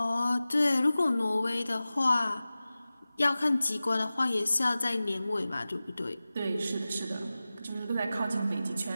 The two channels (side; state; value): both; inverted; correlation -0.96